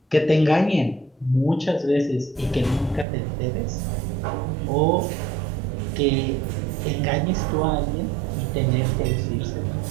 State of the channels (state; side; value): drops out; left; at 3.1 s